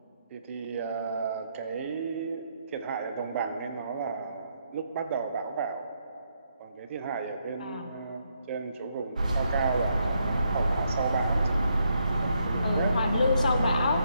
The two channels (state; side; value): inverted; both; correlation -0.77